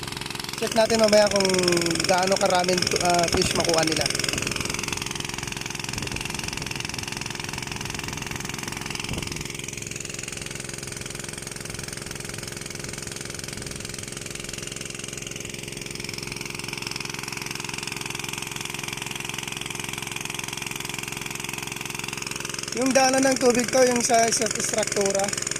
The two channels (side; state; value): both; identical; correlation 1.00